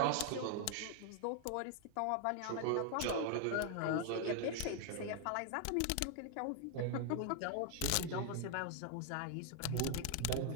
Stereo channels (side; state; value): both; different; correlation 0.00